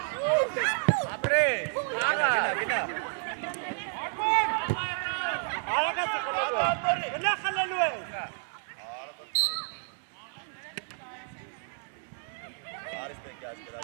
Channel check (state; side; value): silent; left; 57 dB below the other